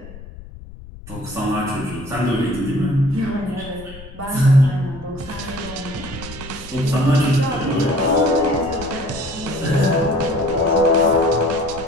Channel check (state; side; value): noise; left; rumble, 16 dB below the sound